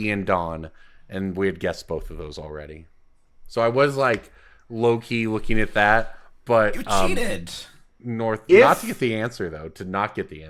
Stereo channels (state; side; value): identical; both; correlation 1.00